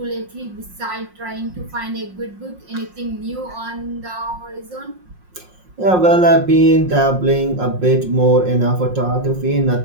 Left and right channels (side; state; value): left; late; 5.6 ms